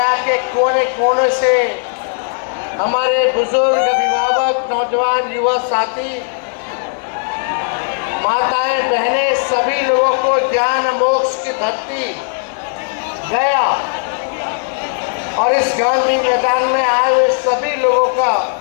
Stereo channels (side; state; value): right; silent; digital silence